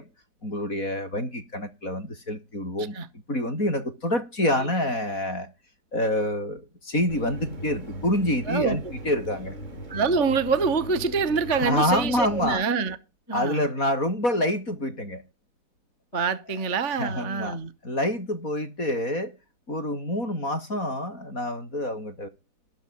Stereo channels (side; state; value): right; late; 4.1 ms